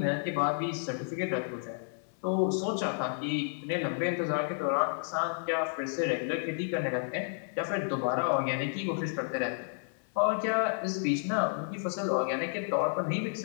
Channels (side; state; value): right; silent; 57 dB below the other